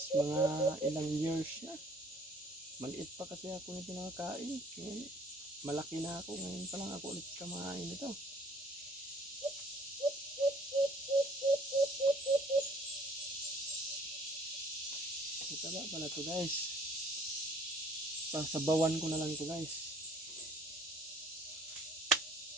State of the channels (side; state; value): both; normal; correlation 0.56